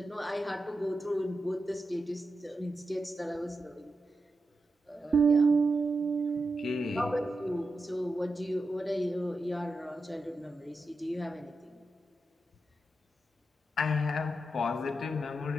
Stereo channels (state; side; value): normal; both; correlation 0.88